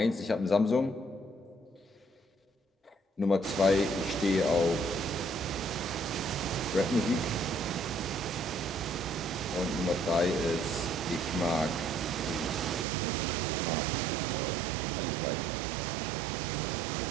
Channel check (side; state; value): left; drops out; at 12.9 s